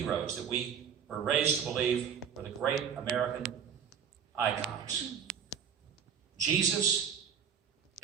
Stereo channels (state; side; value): quieter; left; 7.7 dB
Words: that we were raised to believe were the great American icons. Jesus,